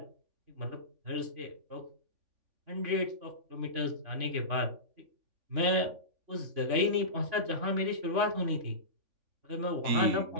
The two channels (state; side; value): late; left; 3.5 ms